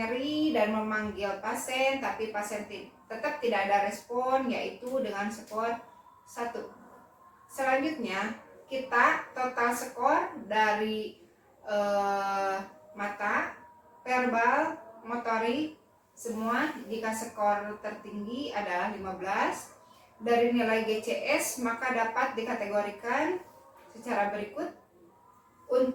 dan memanggil pasien, tapi pasien tetap tidak ada respon, yaitu dengan skor 1. Selanjutnya, kita total skor dari mata, verbal, motorik, semua. Jika skor tertinggi adalah 15 dari nilai GCS, maka dapat dikategorikan secara berikut.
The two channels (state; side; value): identical; both; correlation 1.00